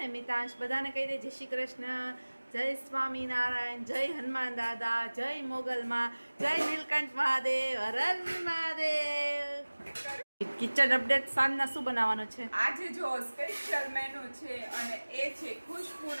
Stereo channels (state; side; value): inverted; both; correlation -1.00